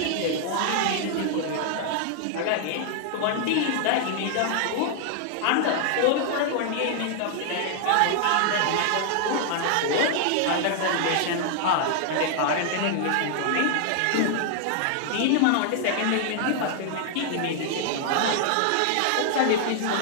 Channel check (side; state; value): both; different; correlation 0.00